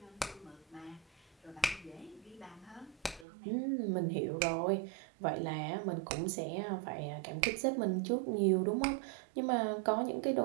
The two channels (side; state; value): left; drops out; at 3.2 s